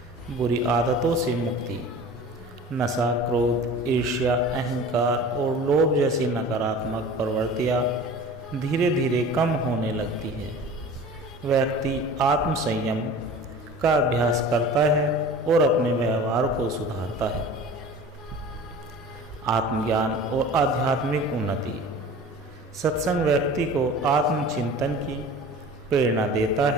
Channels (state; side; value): normal; both; correlation 0.40